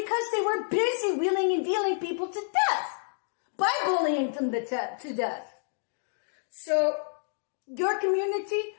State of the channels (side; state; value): right; silent; digital silence